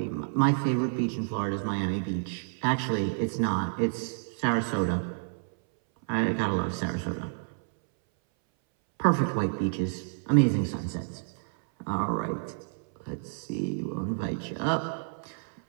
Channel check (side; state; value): left; silent; 58 dB below the other